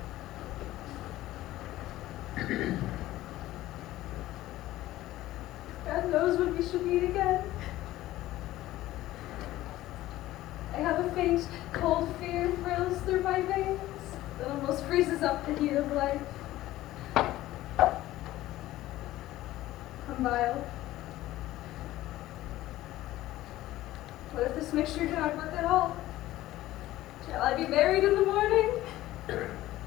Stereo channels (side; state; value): right; quieter; 15.7 dB